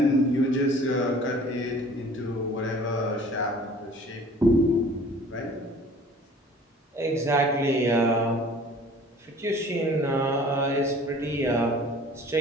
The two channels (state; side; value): normal; both; correlation 0.49